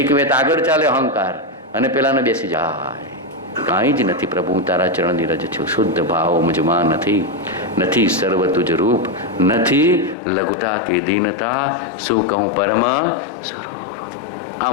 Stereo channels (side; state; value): right; drops out; at 10.2 s